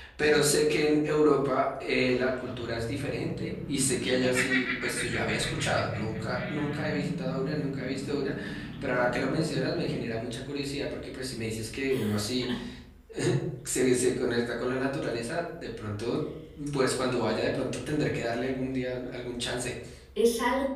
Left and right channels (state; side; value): identical; both; correlation 1.00